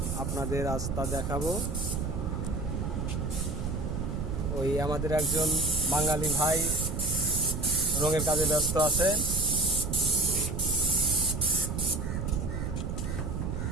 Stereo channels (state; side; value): noise; right; rumble, 3 dB below the sound